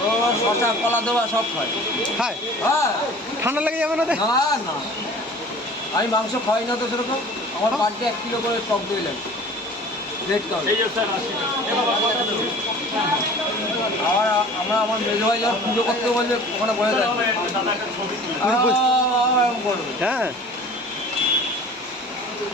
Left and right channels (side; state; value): both; normal; correlation 0.44